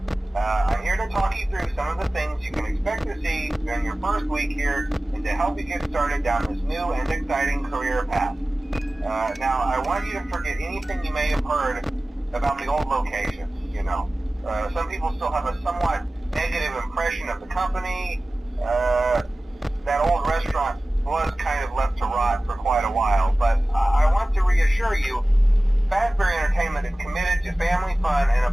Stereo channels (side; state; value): both; normal; correlation 0.97